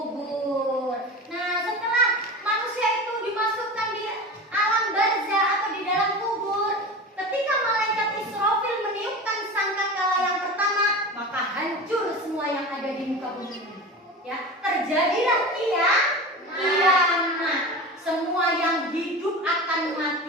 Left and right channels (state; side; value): normal; both; correlation 0.30